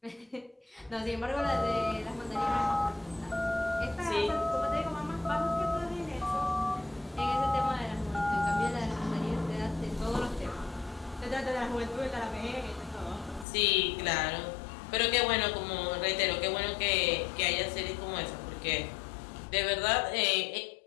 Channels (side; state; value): right; drops out; at 13.5 s